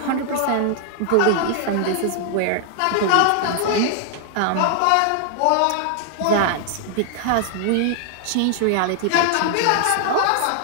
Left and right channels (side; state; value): both; different; correlation 0.00